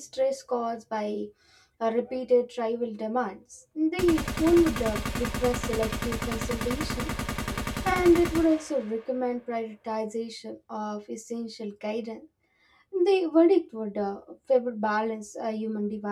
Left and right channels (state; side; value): identical; both; correlation 1.00